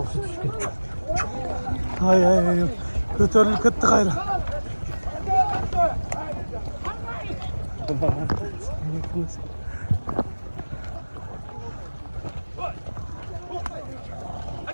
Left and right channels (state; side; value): inverted; both; correlation -1.00